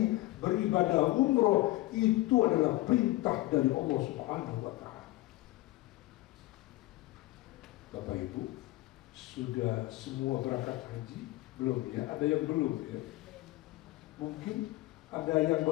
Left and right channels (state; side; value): quieter; right; 18.4 dB